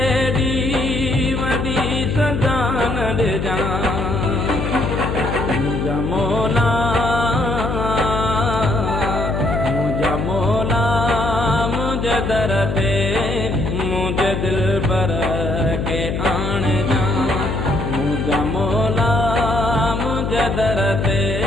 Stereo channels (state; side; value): noise; left; hum, 2 dB below the sound